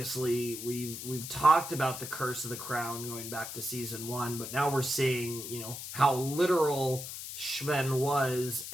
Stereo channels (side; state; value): left; noise; hiss, 8 dB below the sound